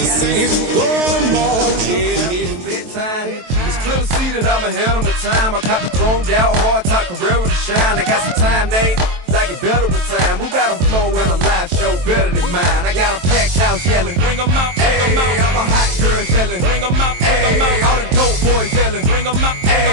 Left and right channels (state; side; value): late; left; 23 ms